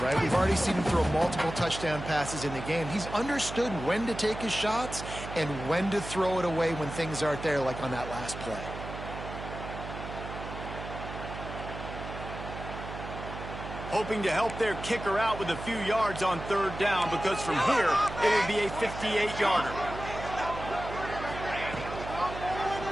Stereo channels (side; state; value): right; noise; hum, 9 dB below the sound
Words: right? We've already seen him throw multiple touchdown passes in the game. He's understood when to take his shots and when to throw it away when things aren't there, like on that last play. Hoping to help their kicker out with a few yards on third down, because from here, it would be a 58-yarder.